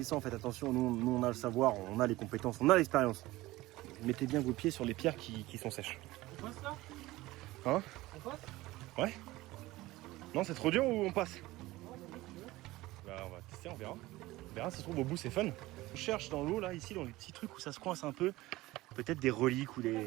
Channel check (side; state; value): left; quieter; 18.6 dB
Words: Faites attention, nous on a le savoir, on a les compétences, on a l'expérience. Mettez bien vos pieds sur les pierres qui sont sèches. On passe là? Hein? On passe? Ouais? Non, c'est trop dur ou on passe? Bah on va tester, on verra. On verra, ça se trouve au bout c'est fun. On cherche dans l'eau là, ici, dans les petits trucs où ça se coince un peu. Peut-être des reliques ou